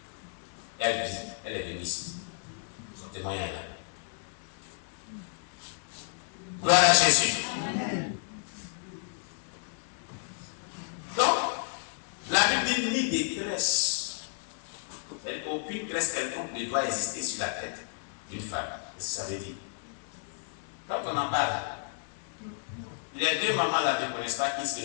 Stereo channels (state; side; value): silent; right; 57 dB below the other